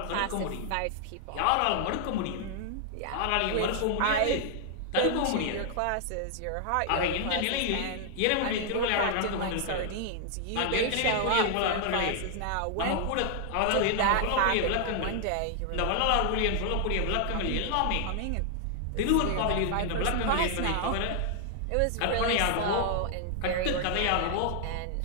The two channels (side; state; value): both; different; correlation 0.00